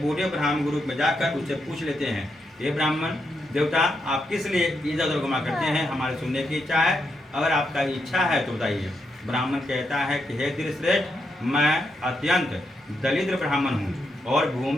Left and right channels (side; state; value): both; normal; correlation 0.82